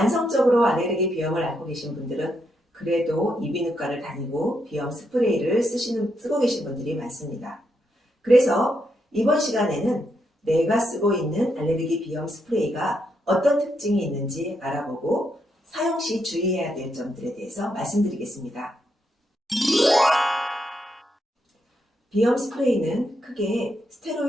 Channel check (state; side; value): normal; both; correlation 0.80